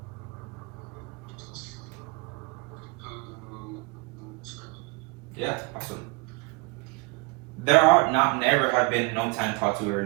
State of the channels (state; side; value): quieter; left; 29.1 dB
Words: Yeah, awesome. There are not never have been no time taught too